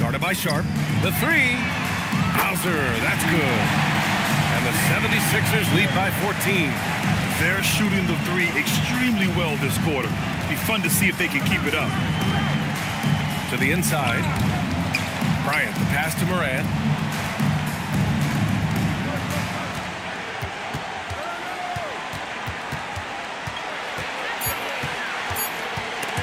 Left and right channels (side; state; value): both; identical; correlation 1.00